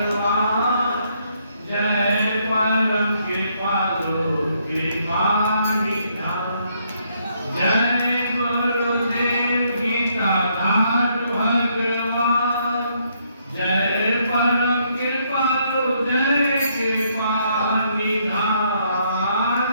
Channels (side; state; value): both; inverted; correlation -0.72